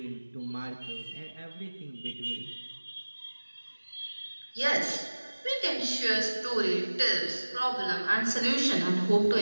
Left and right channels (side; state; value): both; inverted; correlation -1.00